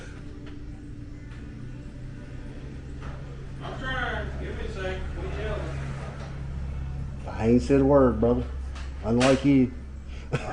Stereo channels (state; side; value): identical; both; correlation 1.00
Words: trying. Give me a second. We yelling. I ain't said a word, brother. Unlike you. I